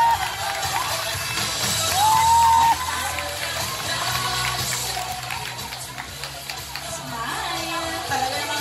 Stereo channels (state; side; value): identical; both; correlation 1.00